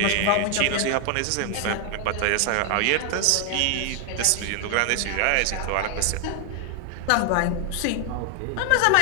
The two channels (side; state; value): both; different; correlation 0.00